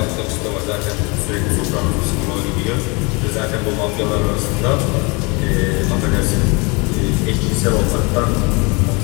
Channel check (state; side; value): quieter; right; 28.9 dB